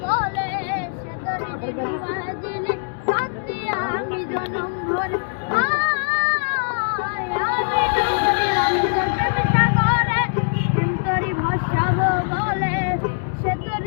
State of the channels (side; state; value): right; silent; digital silence